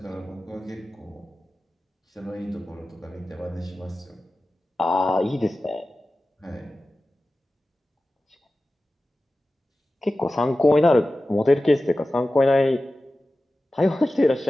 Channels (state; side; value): normal; both; correlation 0.95